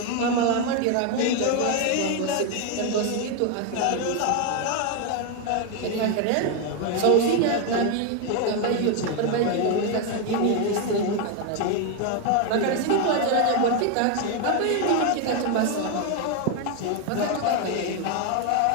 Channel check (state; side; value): different; both; correlation 0.01